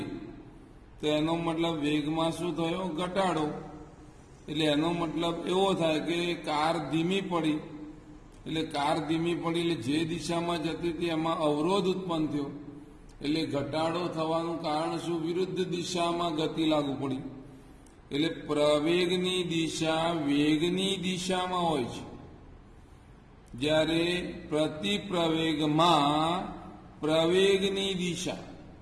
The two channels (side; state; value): both; identical; correlation 1.00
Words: તો એનો મતલબ વેગમાં શું થયો? ઘટાડો. એટલે એનો મતલબ એવો થાય કે કાર ધીમી પડી. એટલે કાર ધીમી પડી એટલે જે દિશામાં જતી હતી એમાં અવરોધ ઉત્પન્ન થયો. એટલે ઘટાડો થવાનું કારણ શું? વિરુદ્ધ દિશામાં ગતિ લાગુ પડી. એટલે પ્રવેગની દિશા વેગની દિશામાં હોય છે, જ્યારે પ્રતિપ્રવેગમાં પ્રવેગની દિશા